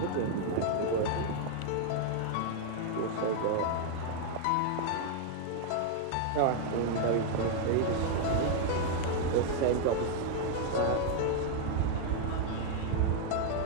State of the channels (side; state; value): both; different; correlation 0.00